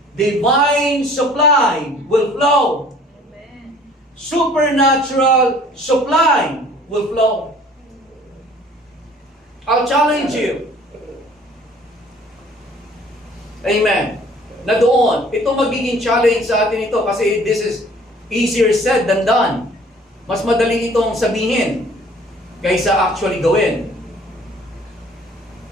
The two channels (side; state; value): both; normal; correlation 0.53